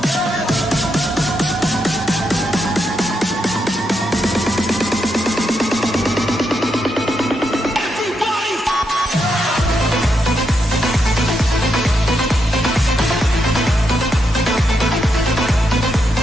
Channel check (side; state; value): both; normal; correlation 0.82